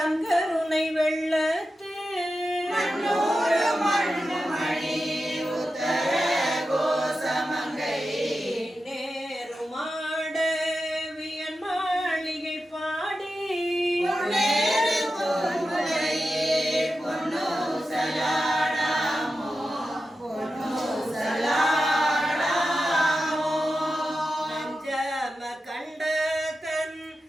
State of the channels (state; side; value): normal; both; correlation 0.91